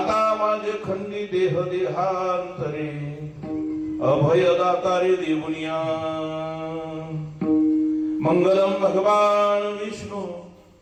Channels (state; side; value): identical; both; correlation 1.00